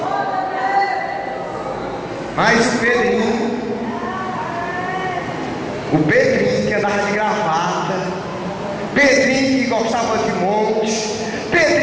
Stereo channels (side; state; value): both; identical; correlation 1.00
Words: Mas o Pedrinho que andava de gravata, Pedrinho que gostava de monte,